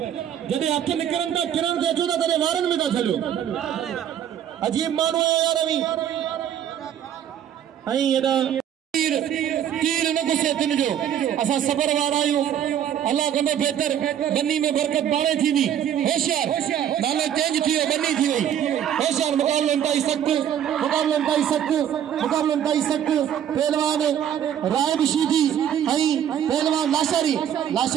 जॾहिं हथ निकरन था किरण ते अचो था तॾहिं वारनि में था छॾियो अजीब माण्हू है यार अवी ऐं एॾा तीर न गुस्से तिन जो असां सबर वारा आहियूं अल्लाह कंदो बेहतर बन्नी में बरकत पाणे थींदी होशियार नालो चेंज थी वियो बन्नी थी वई होशियार मुकाबलो इंतहाई सख्त पहलवान राय शीदी ऐं पहलवान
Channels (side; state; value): left; quieter; 9.8 dB